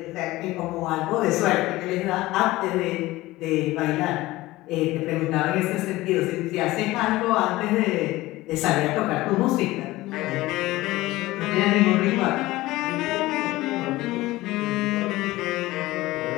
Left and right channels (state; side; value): quieter; right; 18.4 dB